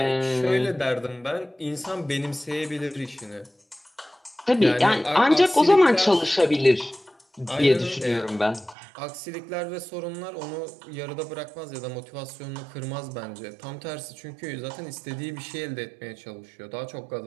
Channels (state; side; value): drops out; left; at 8.8 s